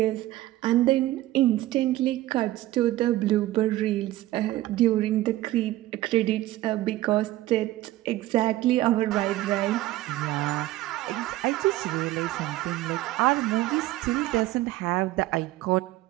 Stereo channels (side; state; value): left; quieter; 16.0 dB